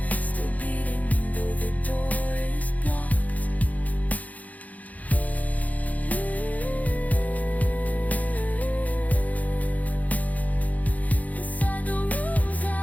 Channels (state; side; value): late; right; 0.076 ms